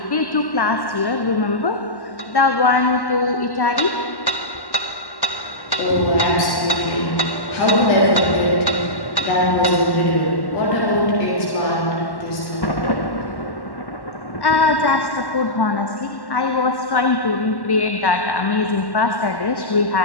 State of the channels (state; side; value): late; right; 1.1 ms